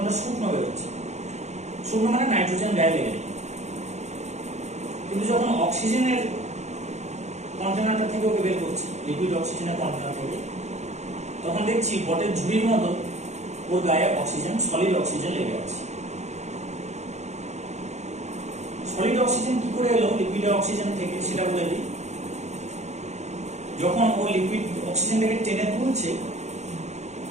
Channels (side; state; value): left; late; 0.33 ms